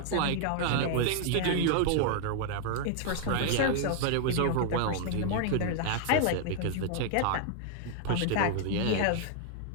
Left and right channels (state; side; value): different; both; correlation 0.00